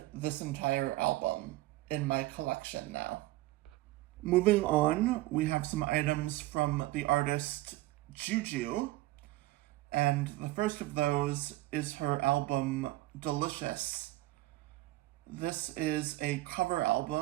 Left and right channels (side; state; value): left; quieter; 17.8 dB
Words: this entire album in my collection now. Moving on, we have some items from the artist Juju, and the first of those is her album Delicious. This is a cover